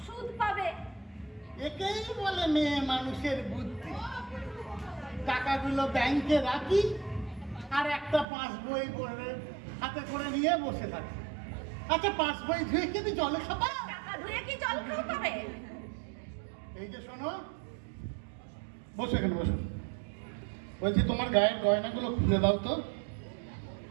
সুদ পাবে। একেই বলে মেয়ে মানুষের বুদ্ধি। টাকাগুলো ব্যাংকে রাখি আর একটা পাসবই হাতে করে নিয়ে বসে থাকি। আচ্ছা, পাসবই ধুয়ে কি তুমি জলে খাবা? টাকা ধুয়ে কি জল খাবে? এই যে শোনো, বসো এখানে বসো। বলছি তোমার গায়ের গয়নাগুলো খুলে দাও তো।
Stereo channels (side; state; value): left; drops out; at 8.2 s